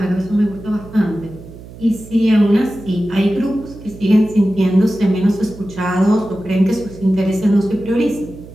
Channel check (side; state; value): right; noise; hum, 17 dB below the sound